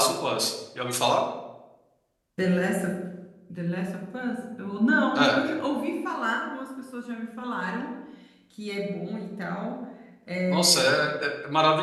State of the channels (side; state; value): both; identical; correlation 1.00